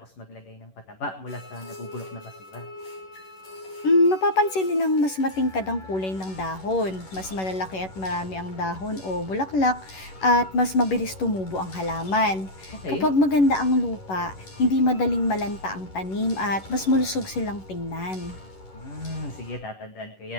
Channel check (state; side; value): late; right; 11 ms